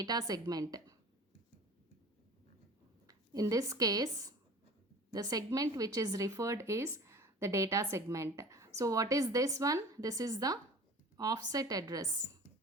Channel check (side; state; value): both; normal; correlation 0.42